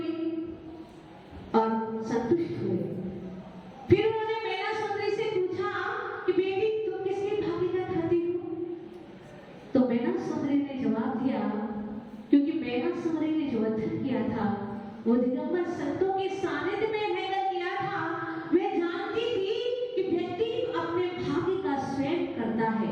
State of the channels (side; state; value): both; identical; correlation 1.00